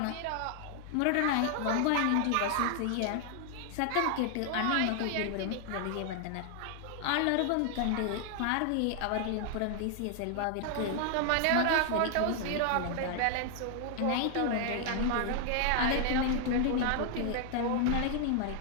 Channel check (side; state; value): both; different; correlation 0.00